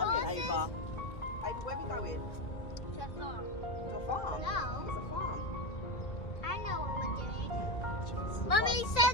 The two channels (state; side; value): late; right; 1.4 ms